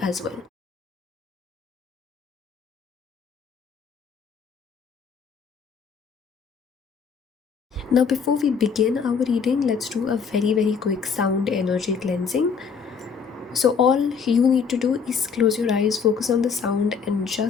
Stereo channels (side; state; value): right; quieter; 6.0 dB